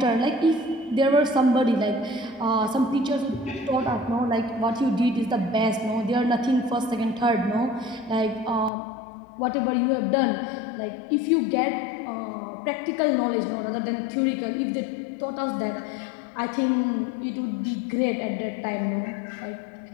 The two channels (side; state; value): right; drops out; at 8.7 s